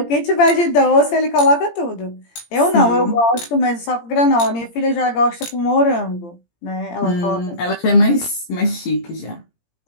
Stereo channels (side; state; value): right; late; 17 ms